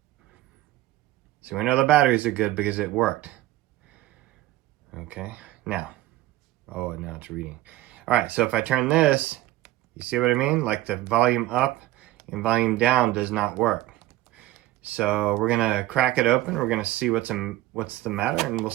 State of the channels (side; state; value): left; quieter; 16.3 dB